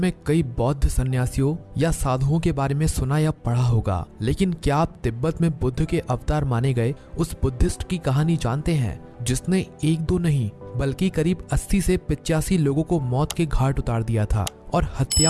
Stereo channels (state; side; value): identical; both; correlation 1.00